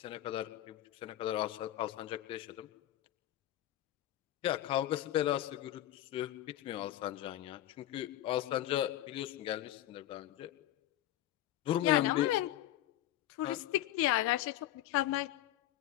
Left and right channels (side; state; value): right; quieter; 13.7 dB